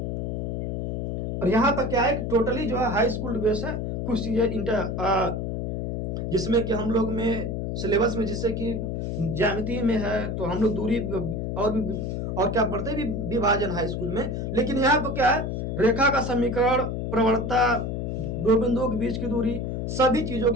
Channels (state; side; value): noise; left; hum, 2 dB below the sound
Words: और यहाँ पर क्या है कि टोटली जो है हाई स्कूल बेस है, कुछ चीजें जिसमें कि हम लोग में सिलेबस में जैसे कि ज्यामिति में है तो हम लोग दूरी और क्या पढ़ते हैं विभाजन हाई स्कूल में। लेकिन यहाँ पर क्या है, रेखा का समीकरण, प्रवणता, दो बिंदुओं के बीच की दूरी, सभी चीजों को